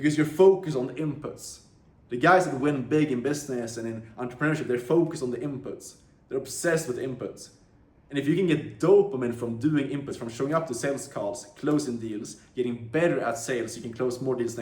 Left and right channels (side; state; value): both; identical; correlation 1.00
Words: you're focused on the inputs. The guys that win big in business and in entrepreneurship, they're focused on the inputs. They're obsessed with inputs. And if you can get dopamine from doing inputs, from showing up to sales calls, closing deals, getting better at sales, you can close more deals